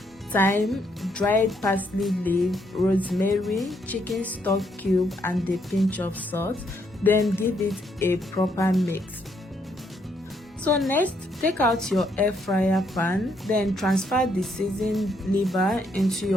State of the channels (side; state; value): both; normal; correlation 0.73